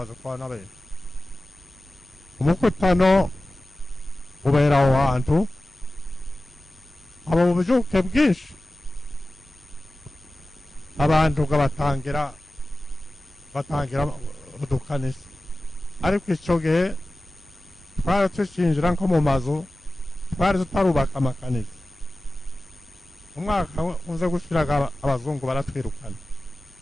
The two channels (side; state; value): both; normal; correlation 0.96